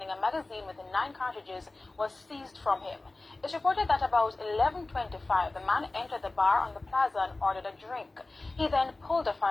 a magazine with 9 cartridges was seized from him. It's reported that about 11:25, the man entered the bar on the plaza and ordered a drink. He then pulled the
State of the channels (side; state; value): right; quieter; 3.1 dB